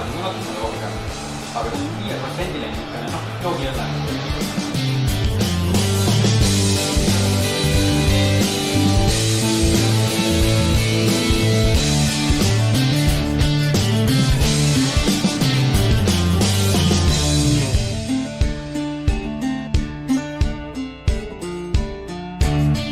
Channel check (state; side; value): identical; both; correlation 1.00